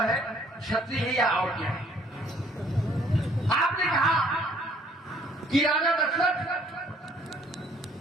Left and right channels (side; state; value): both; normal; correlation 0.61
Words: है, क्षत्रिय है या और क्या है। आपने कहा कि राजा दशरथ